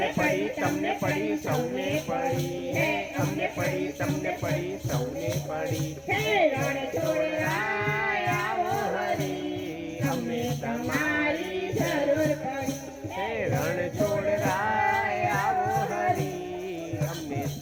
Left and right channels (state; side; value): identical; both; correlation 1.00